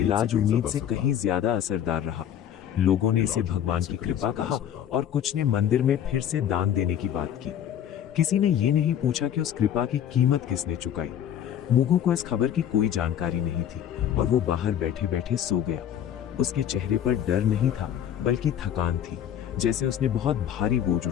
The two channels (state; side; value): quieter; right; 10.0 dB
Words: उम्मीद से कहीं ज्यादा असरदार रहा। लोगों ने इसे भगवान की कृपा कहा और कुछ ने मंदिर में फिर से दान देने की बात की। किसी ने ये नहीं पूछा कि उस कृपा की कीमत किसने चुकाई। मुगु को इस खबर की कोई जानकारी नहीं थी और वो बाहर बैठे बैठे सो गया। उसके चेहरे पर डर नहीं था बल्कि थकान थी, जैसे उसने बहुत भारी बोझ